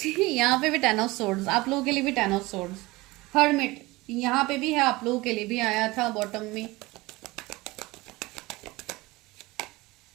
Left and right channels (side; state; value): left; quieter; 21.4 dB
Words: यहाँ पे भी 10 ऑफ सोर्ड्स, आप लोगों के लिए भी 10 ऑफ सोर्ड्स। हर्मिट यहाँ पे भी है, आप लोगों के लिए भी आया था बॉटम में।